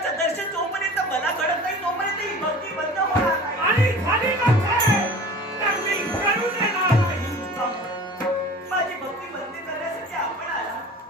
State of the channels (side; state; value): both; normal; correlation 0.40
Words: दर्शन जोपर्यंत मला घडत नाही तोपर्यंत ही भक्ती बंद होणार नाही. आणि झाली नसेल तर मी करू देणार नाही. माझी भक्ती बंद करण्यासाठी आपण आला